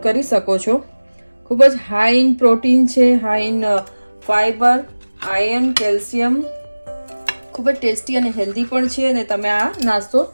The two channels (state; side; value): inverted; both; correlation -1.00